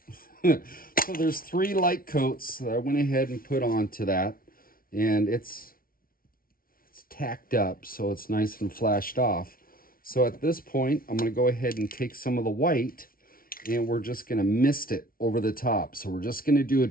So there's 3 light coats that I went ahead and put onto that. And it's tacked up, so it's nice and flashed off. So at this point, I'm going to go ahead and take some of the white, and we're just going to mist it over the top. So we're just going to do a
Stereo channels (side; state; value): right; late; 0.43 ms